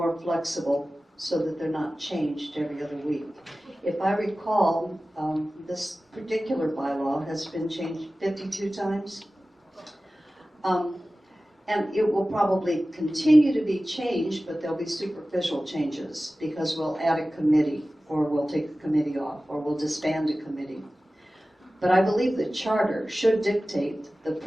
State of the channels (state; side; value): normal; both; correlation 0.96